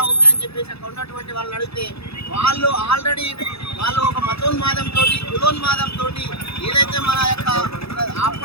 ఉంటాయని చెప్పేసి అక్కడ ఉన్నటువంటి వాళ్ళని అడిగితే వాళ్ళు ఆల్రెడీ వాళ్ళు ఒక మతోన్మాదంతో కులోన్మాదంతో ఏదైతే మన యొక్క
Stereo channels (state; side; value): late; right; 0.78 ms